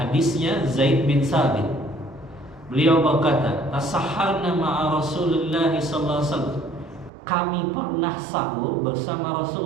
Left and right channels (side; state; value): left; drops out; at 7.1 s